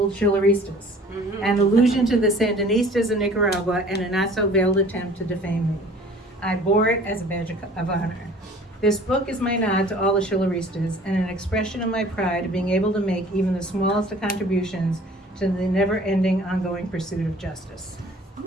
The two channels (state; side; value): normal; both; correlation 0.49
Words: Shilleristas, an allusion to the Sandinistas in Nicaragua and a not-so-veiled attempt to defame me. I bore it as a badge of honor. This book is my nod to all the Shilleristas and an expression of my pride of being able to make even the smallest of contributions to the never-ending, ongoing pursuit of justice.